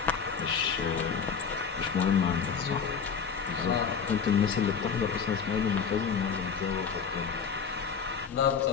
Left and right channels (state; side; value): quieter; right; 6.4 dB